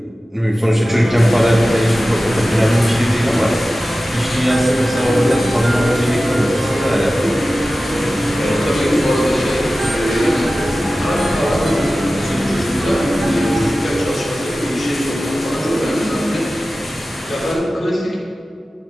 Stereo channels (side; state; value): both; normal; correlation 0.95